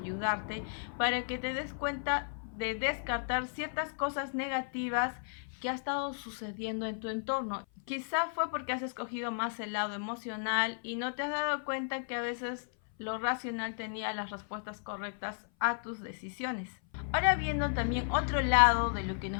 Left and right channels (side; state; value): right; silent; 55 dB below the other